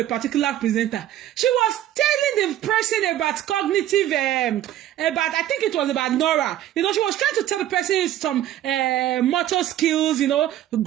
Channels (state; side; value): quieter; left; 12.5 dB